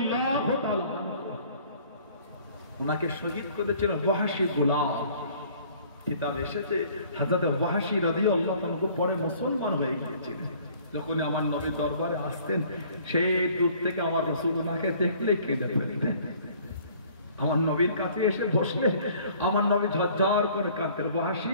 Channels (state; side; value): inverted; both; correlation -0.55